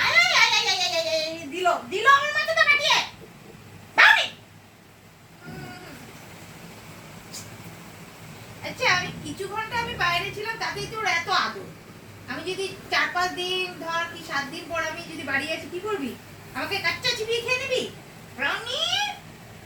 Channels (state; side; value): identical; both; correlation 1.00